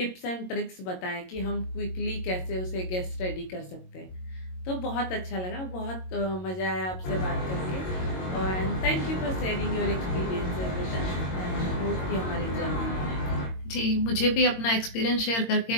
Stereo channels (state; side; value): late; right; 22 ms